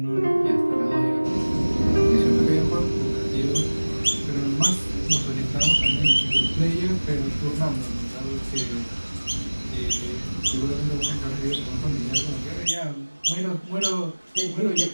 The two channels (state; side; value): inverted; both; correlation -1.00